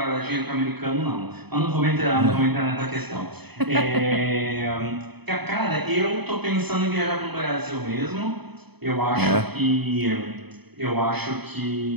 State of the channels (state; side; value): late; left; 0.98 ms